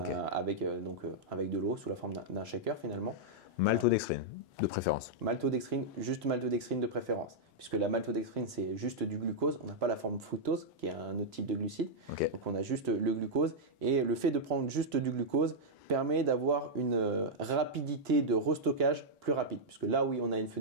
de l'eau sous la forme d'un shaker finalement. Maltodextrine, de préférence. Maltodextrine, juste maltodextrine de préférence, puisque la maltodextrine c'est juste du glucose, on n'a pas la forme fructose qui est un autre type de glucide, Okay. donc on a juste le glucose, et le fait de prendre juste du glucose permet d'avoir une rapidité de restockage plus rapide, puisque là oui on a une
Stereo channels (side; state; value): both; normal; correlation -0.05